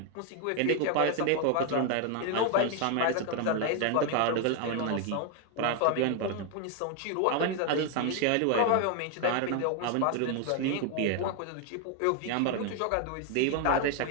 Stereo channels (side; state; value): both; different; correlation 0.01